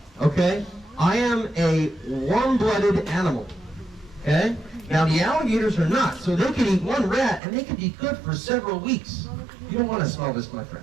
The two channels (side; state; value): left; drops out; at 7.4 s